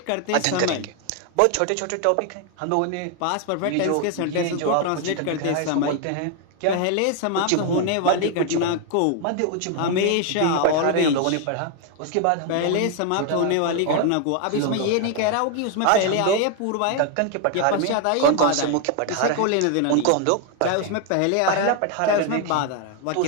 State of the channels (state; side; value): different; both; correlation 0.01